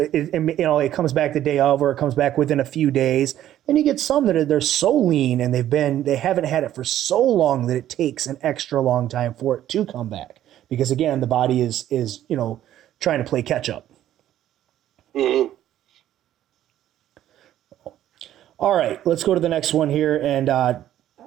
comes back the day of, or it comes back within a few days. Then you get some that they're so lean and they haven't had it for so long that it takes an extra long time for it to come back. Because again, the body is trying to play catch up. Mm-hmm. All right, let's go to the next one here. And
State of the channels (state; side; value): quieter; left; 12.2 dB